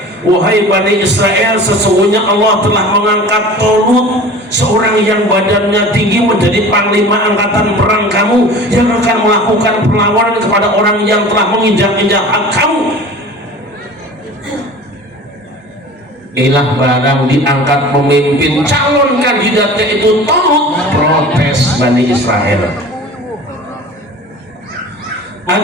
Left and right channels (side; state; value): both; normal; correlation 0.40